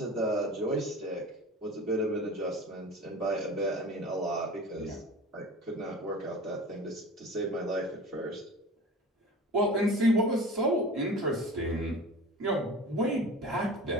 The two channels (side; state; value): both; normal; correlation 0.36